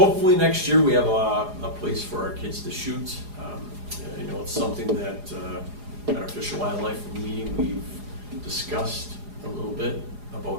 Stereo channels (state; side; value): late; left; 4.9 ms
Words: next year we have a place for our kids to shoot. You know, it's something that at our Fish and Wildlife meeting we've discussed a little bit